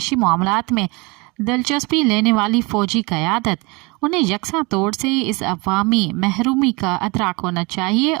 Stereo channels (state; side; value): quieter; left; 27.1 dB